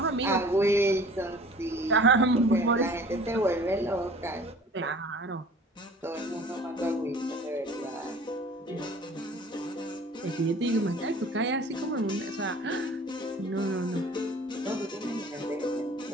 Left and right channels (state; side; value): normal; both; correlation 0.47